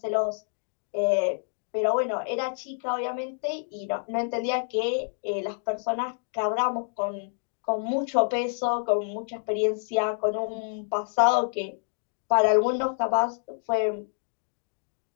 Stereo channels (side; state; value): right; silent; digital silence